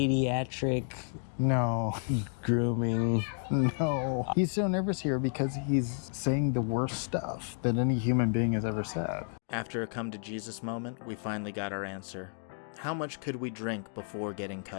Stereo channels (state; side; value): silent; right; 57 dB below the other